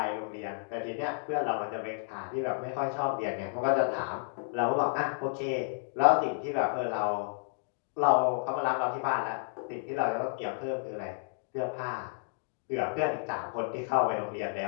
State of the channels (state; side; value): silent; right; digital silence